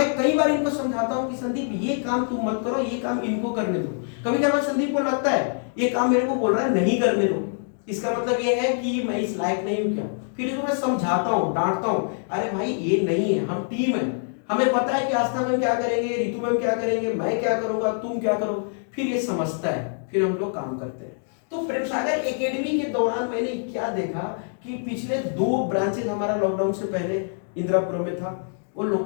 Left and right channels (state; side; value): silent; right; digital silence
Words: कई बार इनको समझाता हूं कि संदीप ये काम तुम मत करो, ये काम इनको करने दो। कभी कभी संदीप को लगता है ये काम मेरे को बोल रहा है नहीं करने दो, इसका मतलब ये है कि मैं इस लायक नहीं हूं क्या। फिर इसको मैं समझाता हूं, डांटता हूं, अरे भाई ये नहीं है, हम टीम है, हमें पता है कि आस्था मैम क्या करेंगे, रितु मैम क्या करेंगे, मैं क्या करूंगा, तुम क्या करो, फिर ये समझता है, फिर हम लोग काम करते हैं। तो प्रेम सागर एकेडमी के दौरान मैंने क्या देखा कि पिछले 2 ब्रांचेस हमारा लॉकडाउन से पहले इंदिरापुरम में था, वो लोग